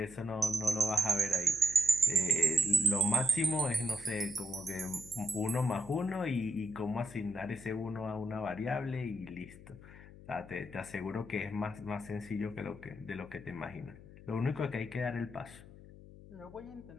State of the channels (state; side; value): noise; left; hum, 18 dB below the sound